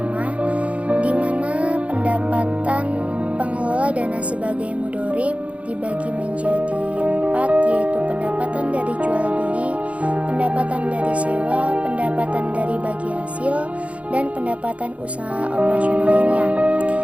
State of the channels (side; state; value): left; late; 0.064 ms